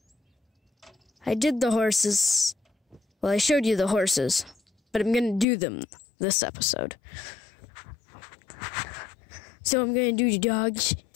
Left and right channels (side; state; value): right; drops out; at 5.5 s